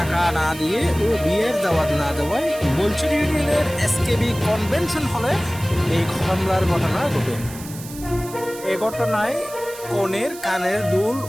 না দিয়ে ও বিয়ের দাওয়াত না দেওয়ায় বলছড়ি ইউনিয়নের এসকেবি কনভেনশন হলে এই হামলার ঘটনা ঘটে। এ ঘটনায় কনের কানের দুল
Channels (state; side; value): noise; right; hiss, 15 dB below the sound